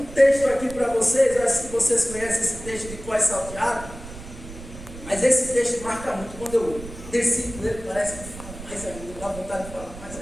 texto aqui para vocês. Eu acho que vocês conhecem esse texto de Cós Salteado, mas esse texto marca muito. Quando eu desci com ele, parece que fala mais ainda, dá vontade de falar mais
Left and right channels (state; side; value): noise; right; rumble, 14 dB below the sound